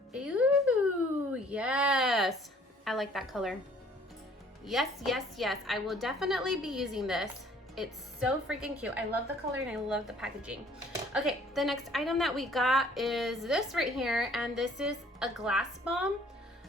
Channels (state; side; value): normal; both; correlation 0.57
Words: Ooh, yes, I like that color. Yes, yes, yes, I will definitely be using this. It's so freaking cute. I love the color and I love the packaging. Okay, the next item that we got is this right here, and this is a glass balm,